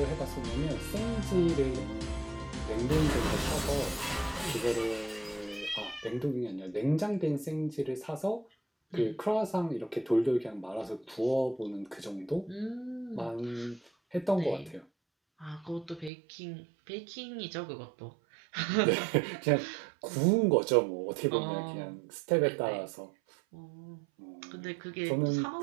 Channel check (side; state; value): left; drops out; at 16.1 s